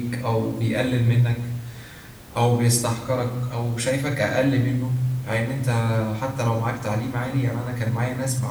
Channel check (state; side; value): identical; both; correlation 1.00